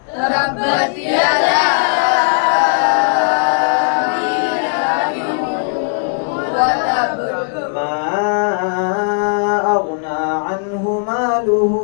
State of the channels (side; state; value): right; silent; digital silence